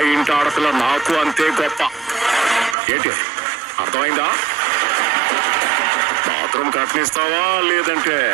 ఇంటి ఆడపిల్ల నాకు అంతే గొప్ప. ఏంటి అర్థమైందా? బాత్రూమ్ కట్టనిస్తావా లేదంటే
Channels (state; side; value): drops out; left; at 2.8 s